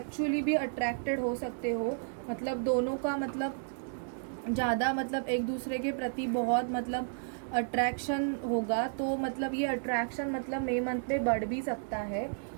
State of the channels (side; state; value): left; silent; digital silence